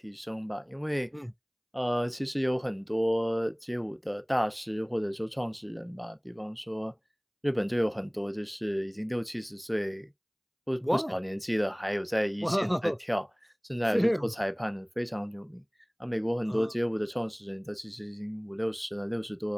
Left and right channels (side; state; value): both; identical; correlation 1.00